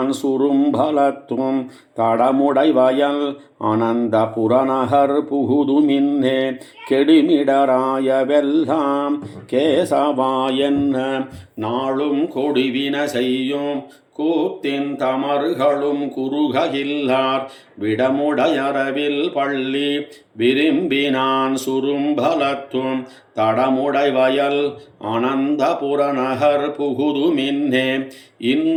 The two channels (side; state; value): both; identical; correlation 1.00